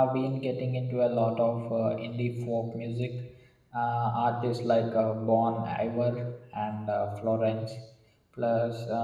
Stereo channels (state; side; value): identical; both; correlation 1.00